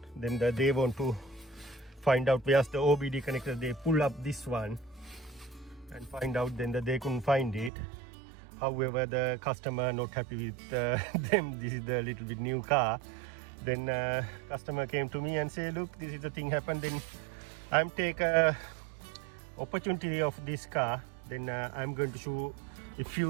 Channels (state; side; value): drops out; left; at 7.7 s